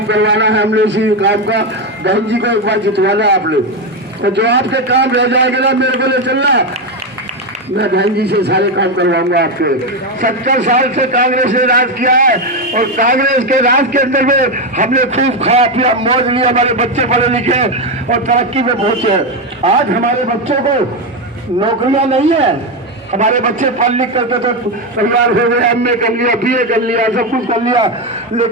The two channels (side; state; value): both; normal; correlation 0.09